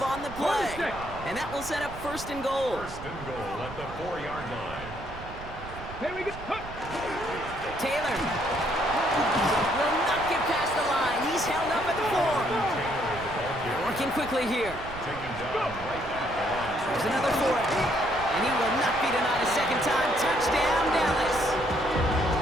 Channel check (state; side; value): noise; right; rumble, 13 dB below the sound